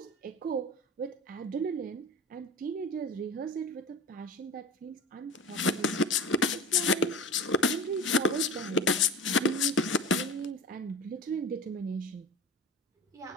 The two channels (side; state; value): both; normal; correlation 0.33